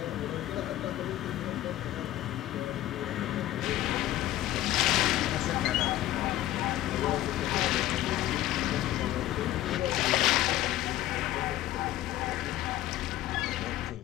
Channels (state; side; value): quieter; right; 14.5 dB